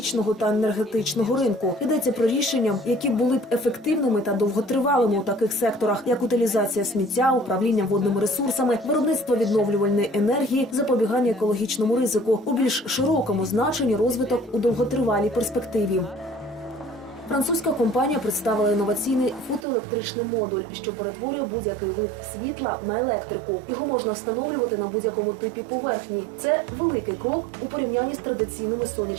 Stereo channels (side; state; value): left; drops out; at 19.7 s